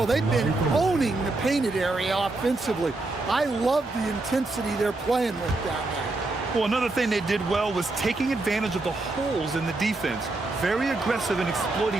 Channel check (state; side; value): quieter; left; 3.1 dB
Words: they've been owning the painted area offensively. I love the intensity they're playing with down there. Well, another thing they did well was taking advantage of the holes in the defense. Very aggressive in